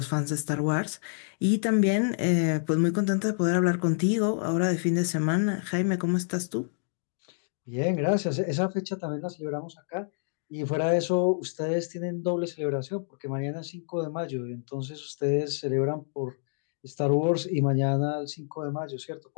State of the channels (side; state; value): right; silent; digital silence